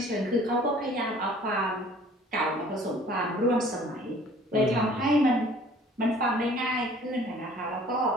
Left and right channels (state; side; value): normal; both; correlation 0.52